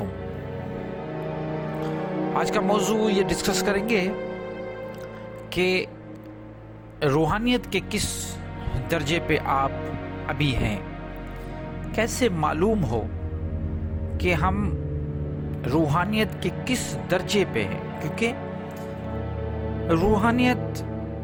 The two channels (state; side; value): identical; both; correlation 1.00